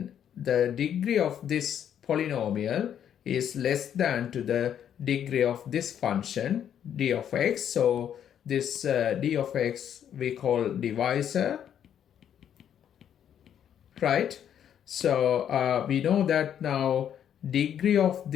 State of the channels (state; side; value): quieter; right; 9.4 dB